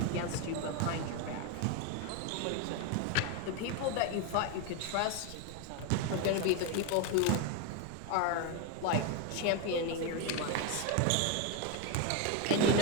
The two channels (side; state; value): both; different; correlation 0.02